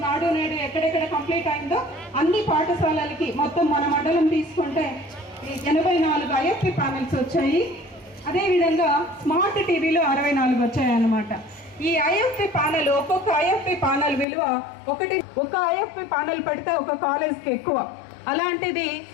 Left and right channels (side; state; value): right; drops out; at 14.2 s